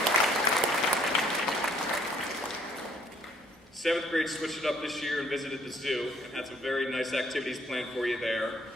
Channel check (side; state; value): both; normal; correlation 0.63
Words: 7th grade switched it up this year and visited the zoo and had some very nice activities planned for you there.